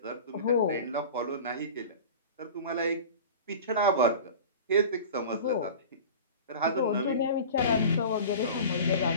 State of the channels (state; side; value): inverted; both; correlation -0.36